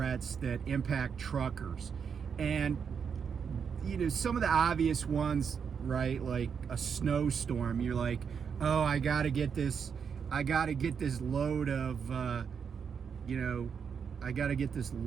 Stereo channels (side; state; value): left; quieter; 6.7 dB